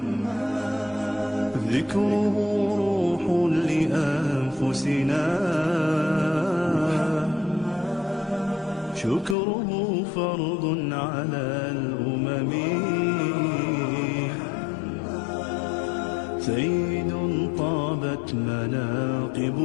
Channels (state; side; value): drops out; right; at 9.3 s